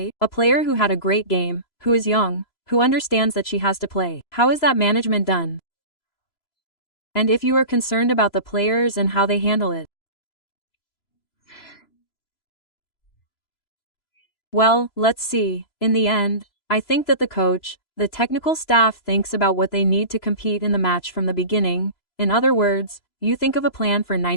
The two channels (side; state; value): right; late; 3.0 ms